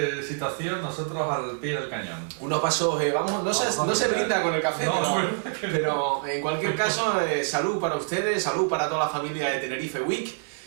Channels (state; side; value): silent; left; digital silence